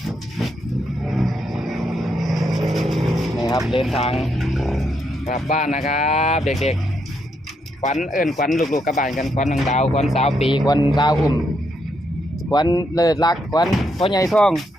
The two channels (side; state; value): both; normal; correlation 0.78